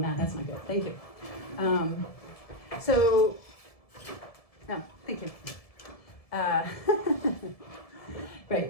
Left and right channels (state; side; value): late; right; 1.7 ms